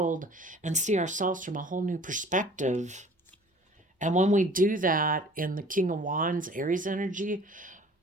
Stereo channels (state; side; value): normal; both; correlation 0.49